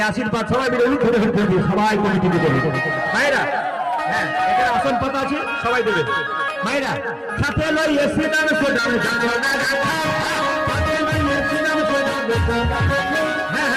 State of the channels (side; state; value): both; identical; correlation 1.00